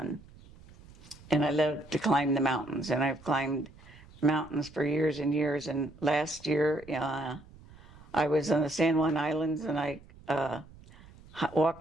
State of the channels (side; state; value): right; noise; rumble, 22 dB below the sound